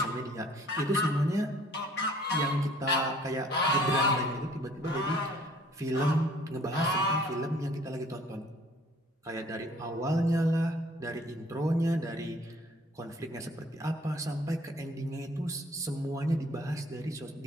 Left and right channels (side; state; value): both; normal; correlation 0.55